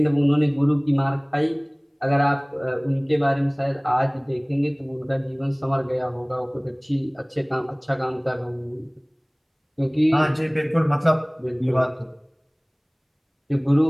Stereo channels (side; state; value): both; identical; correlation 1.00